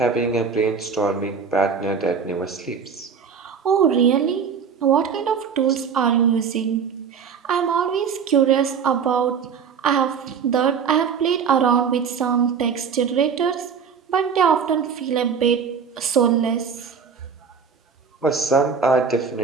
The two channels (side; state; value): left; quieter; 6.4 dB